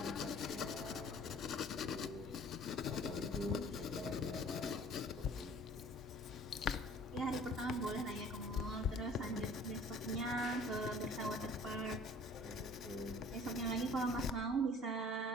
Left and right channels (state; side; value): normal; both; correlation 0.50